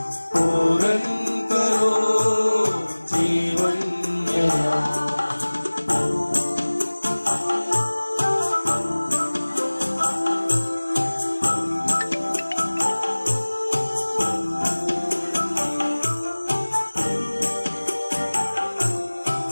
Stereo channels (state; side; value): inverted; both; correlation -1.00